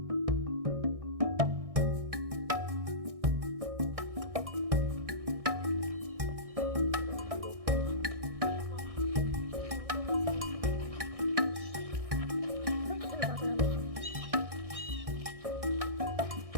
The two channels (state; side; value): late; left; 1.6 ms